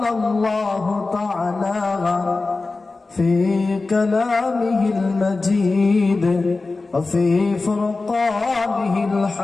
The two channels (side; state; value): right; quieter; 3.6 dB